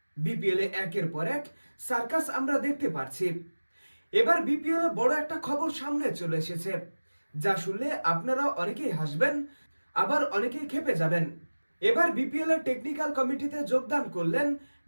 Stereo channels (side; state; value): both; inverted; correlation -1.00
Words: বিপিএল এ একের পর এক সার্কাস আমরা দেখতে পাচ্ছি। এবার বিপিএল এ বড় একটা খবর সামনে চলে এসেছে, যা শুনলে আপনারা অনেকেই হাসবেন, আবার অনেকেই ক্ষেপে যাবেন। এবার বিপিএল এর টেকনিক্যাল কমিটিতে যোগদান করলেন